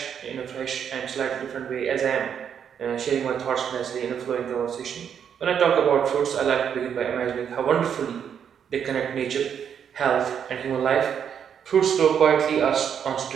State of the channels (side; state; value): left; quieter; 8.1 dB